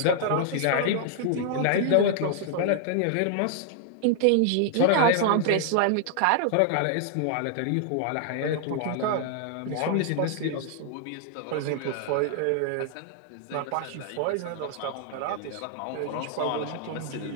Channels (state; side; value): different; both; correlation 0.00